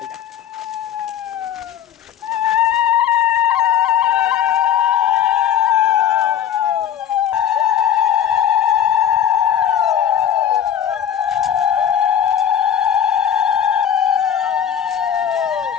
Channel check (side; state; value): right; quieter; 9.3 dB